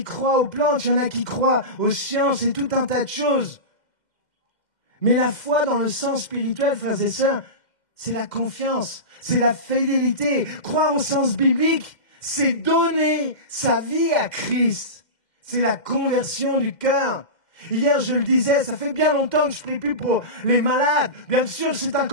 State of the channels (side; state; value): right; late; 2.1 ms